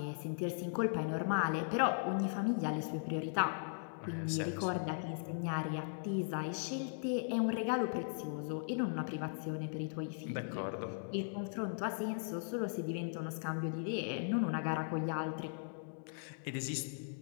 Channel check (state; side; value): silent; right; digital silence